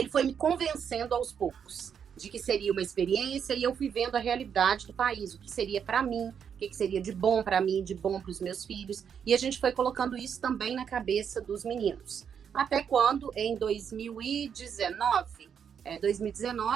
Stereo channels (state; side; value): quieter; left; 7.6 dB